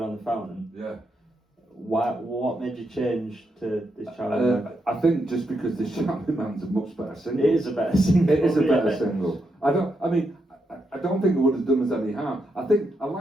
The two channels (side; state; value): both; normal; correlation 0.82